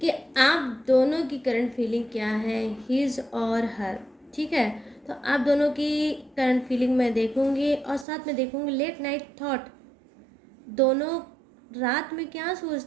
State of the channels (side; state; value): left; drops out; at 8.1 s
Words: आप दोनों की करंट फीलिंग क्या है, हिज और हर। ठीक है, तो आप दोनों की करंट फीलिंग मैं देखूँगी और साथ में देखूँगी लेट नाइट थॉट। दोनों रात में क्या